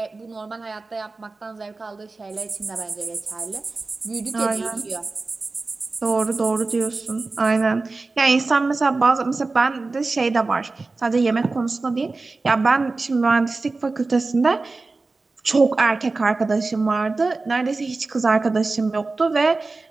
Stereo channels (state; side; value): quieter; left; 3.6 dB